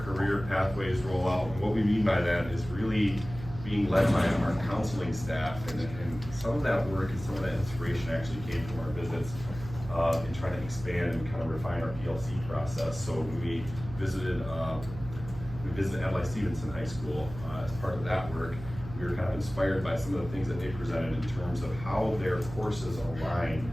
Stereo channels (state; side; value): noise; right; hum, 12 dB below the sound